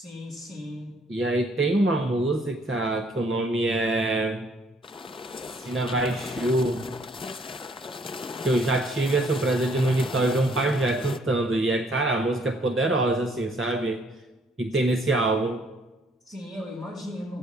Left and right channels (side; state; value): both; normal; correlation 0.64